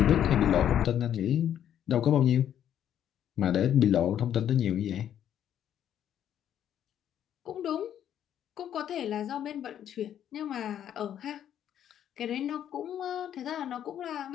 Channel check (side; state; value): right; quieter; 10.2 dB